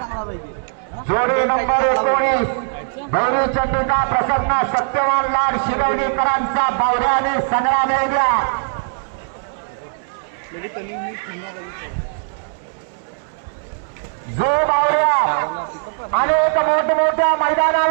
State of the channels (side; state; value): left; silent; digital silence